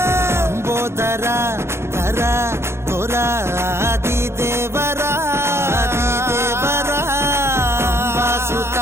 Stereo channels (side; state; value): left; late; 0.13 ms